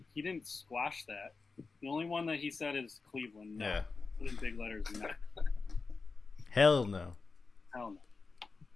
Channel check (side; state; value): right; quieter; 4.3 dB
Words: He didn't squash that. The only one that he said is Cleveland. No. Yeah. Put in big letters. No. Hell no. Hell no.